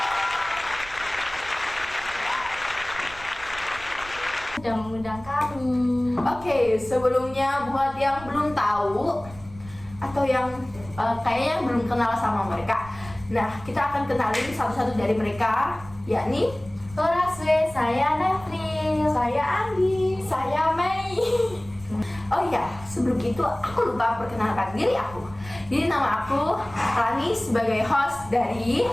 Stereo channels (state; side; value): noise; right; rumble, 18 dB below the sound